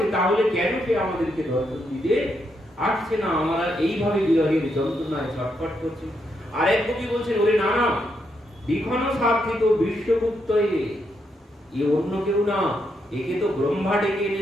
তাহলে কেন সে আমাদেরকে দর্শন দিতে আসছে না? আমরা এইভাবে বিরহের যন্ত্রণায় ছটফট করছি। আর এক কবি বলছেন, ওরে না না, বিখন সার্থিত বিশ্বগুপ্ত, এ অন্য কেউ না, একে তো ব্রহ্মা ডেকে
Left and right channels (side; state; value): both; normal; correlation 0.79